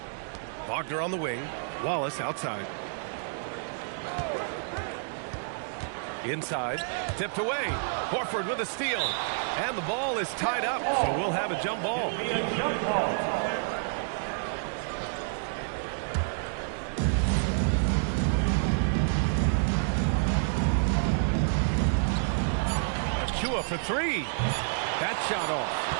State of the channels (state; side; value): silent; left; digital silence